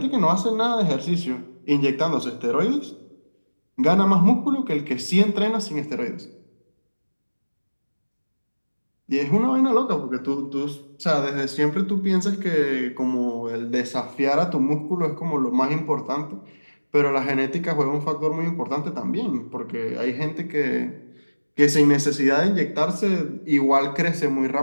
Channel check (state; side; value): inverted; both; correlation -1.00